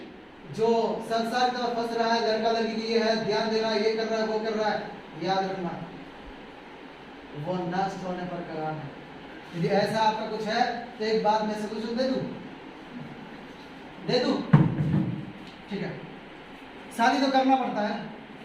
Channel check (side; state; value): both; identical; correlation 1.00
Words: जो संसार में फंस रहा है, लड़का लड़की के लिए है, ध्यान देना, ये कर रहा है वो कर रहा है, याद रखना वो नष्ट होने पर कगार है। यदि ऐसा आपका कुछ है तो एक बात मैं सोल्यूशन दे दूं, ठीक है। शादी तो करना पड़ता है